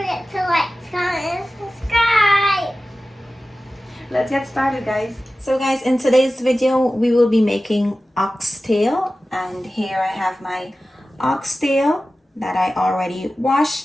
to like, comment, and subscribe. Let's get started, guys. So guys, in today's video we will be making oxtail, and here I have my oxtail that I already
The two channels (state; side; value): normal; both; correlation 0.95